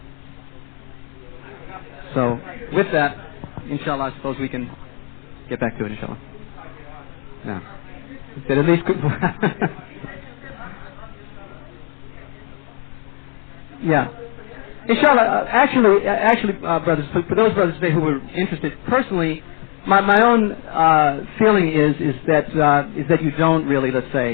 So, with that, inshallah, I suppose we can get back to it, inshallah. Yeah. That at least yeah. Inshallah, actually, brothers, for those brothers today who were interested, personally, my own feeling is that you don't really, let's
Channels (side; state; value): right; quieter; 39.0 dB